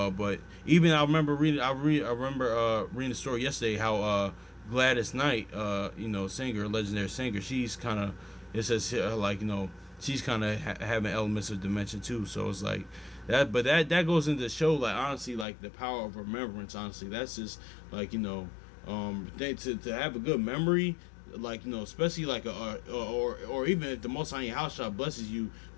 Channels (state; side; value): drops out; right; at 15.5 s